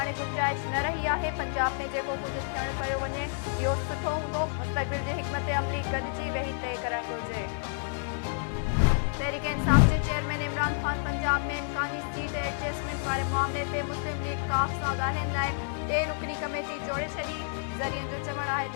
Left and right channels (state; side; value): silent; right; digital silence